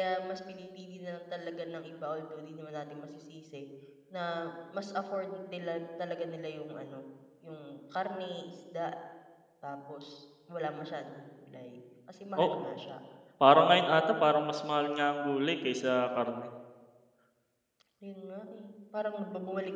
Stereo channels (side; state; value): both; identical; correlation 1.00